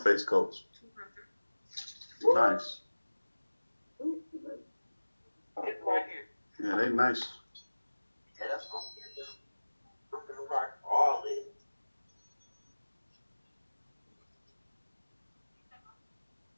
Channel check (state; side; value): inverted; both; correlation -1.00